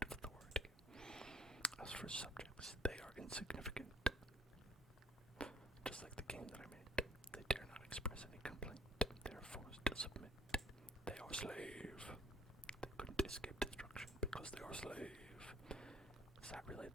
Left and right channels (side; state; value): both; normal; correlation 0.56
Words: of authority. As for subjects, they are insignificant. Just like the game that I made, they dare not express any complaint. They are forced to submit. They are slave. They couldn't escape destruction because they are slave. Is that really